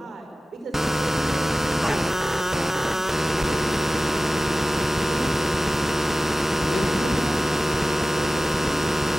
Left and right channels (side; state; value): both; normal; correlation 0.95